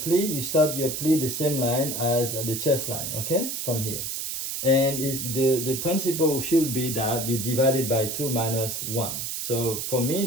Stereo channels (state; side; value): noise; right; hiss, 4 dB below the sound